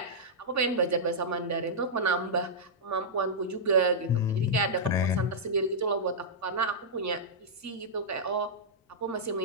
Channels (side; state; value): both; normal; correlation -0.11